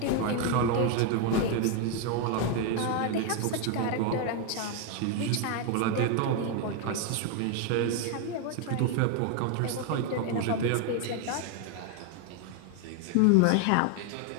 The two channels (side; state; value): both; different; correlation 0.01